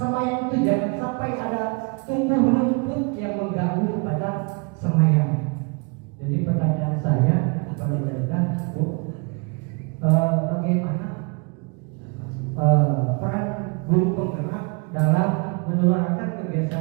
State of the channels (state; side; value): quieter; left; 32.8 dB